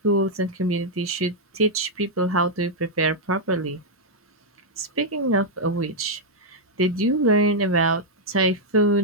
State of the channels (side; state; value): both; normal; correlation -0.03